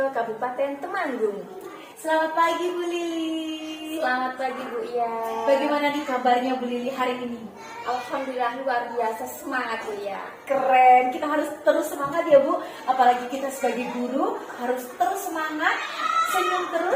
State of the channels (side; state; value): both; identical; correlation 1.00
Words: Kabupaten Temanggung. Selamat pagi Bu Lili. Selamat pagi Bu Ia. Bagaimana nih kabarnya Bu Lili hari ini? Alhamdulillah luar biasa, semangat Bu Ia. Keren, kita harus terus semangat ya Bu. Apalagi kita sebagai guru harus terus semangat, senyum